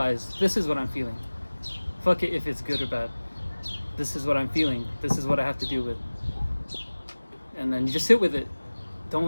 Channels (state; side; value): inverted; both; correlation -1.00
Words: this is what I'm feeling. Fuck it if it's good or bad. This is what I'm feeling. This is what I have to deal with. And then you just sit with it.